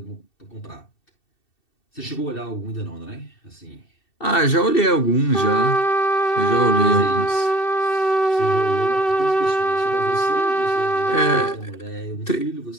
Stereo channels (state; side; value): late; right; 2.7 ms